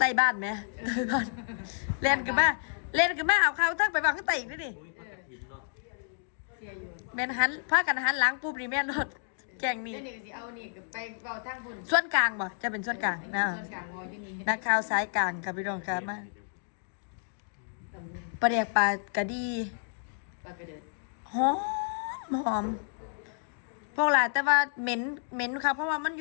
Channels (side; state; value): right; silent; digital silence